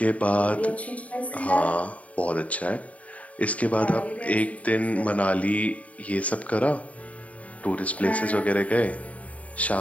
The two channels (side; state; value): right; late; 0.068 ms